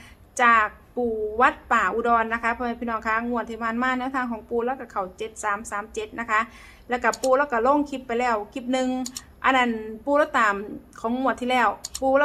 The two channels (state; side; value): identical; both; correlation 1.00